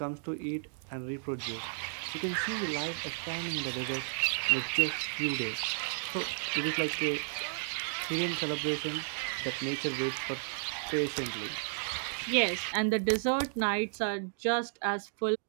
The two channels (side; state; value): left; silent; digital silence